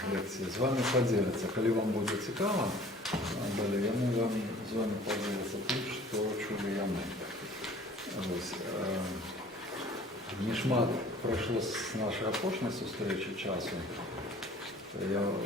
лекції, з вами поділяться. Коли вам буде цікаво, далі вони вам з вами поділяться тим, що чули я ми. Ось. Не шмат пройшло з нашої опошної зустрічі часу. Я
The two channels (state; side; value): normal; both; correlation 0.50